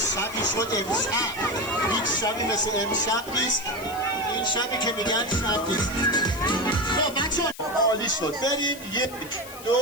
شد امشب. هیچ شبی مثل امشب نیست. این شبی که میگن شب نیست. خب بچه عالی شد. بریم 1 2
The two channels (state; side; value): noise; left; hiss, 16 dB below the sound